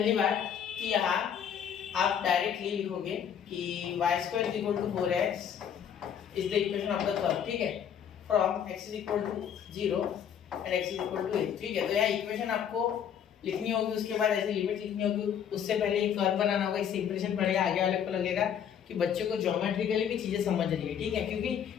बात कि यहाँ आप डायरेक्टली लिखोगे कि y² = 4x is the equation of the curve, ठीक है, from x = 0 and x = a, ठीक है। तो यहाँ इक्वेशन आपको लिखनी होगी, उसके बाद ऐसे लिमिट लिखनी होगी, उससे पहले एक कर्व बनाना होगा। इससे इंप्रेशन पड़ेगा, आगे वाले को लगेगा कि बच्चे को ज्योमेट्रिकली भी चीजें समझ रही है, ठीक है। क्योंकि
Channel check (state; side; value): quieter; right; 8.5 dB